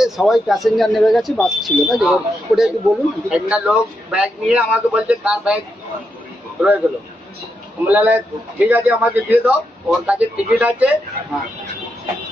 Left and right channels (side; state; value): both; normal; correlation 0.83